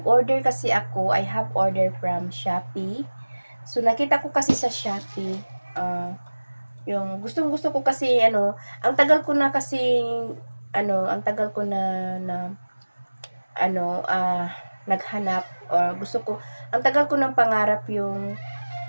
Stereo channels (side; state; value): both; inverted; correlation -1.00